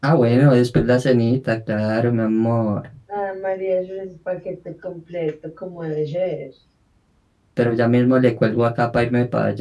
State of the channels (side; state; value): both; identical; correlation 1.00